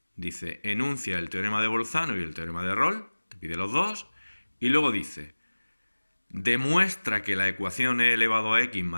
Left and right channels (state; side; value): inverted; both; correlation -1.00